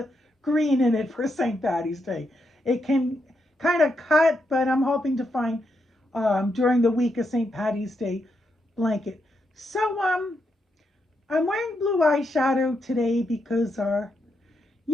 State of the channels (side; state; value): both; normal; correlation 0.81